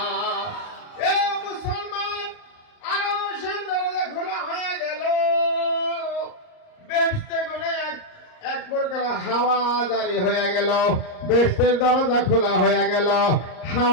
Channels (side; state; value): right; late; 38 ms